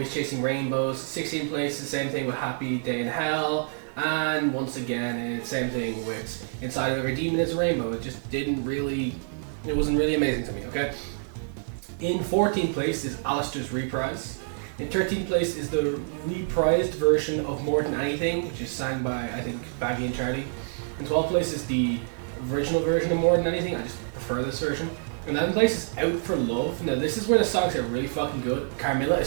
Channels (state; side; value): silent; left; digital silence